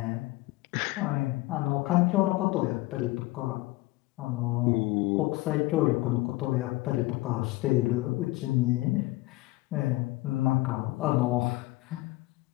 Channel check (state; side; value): quieter; right; 20.1 dB